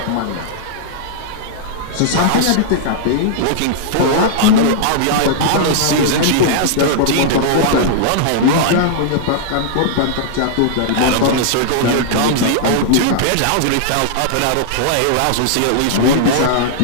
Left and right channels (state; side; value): different; both; correlation -0.01